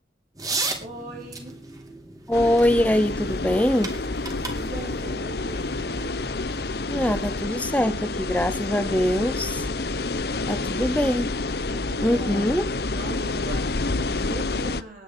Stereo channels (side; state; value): both; normal; correlation 0.70